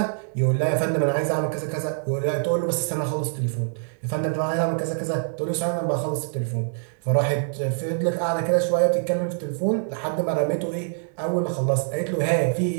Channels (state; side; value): silent; left; digital silence